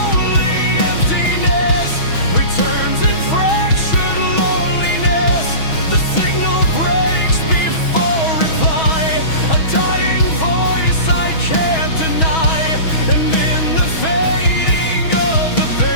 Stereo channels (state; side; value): late; right; 6.2 ms